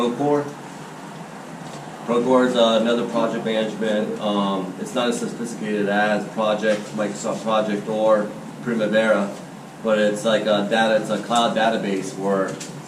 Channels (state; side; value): identical; both; correlation 1.00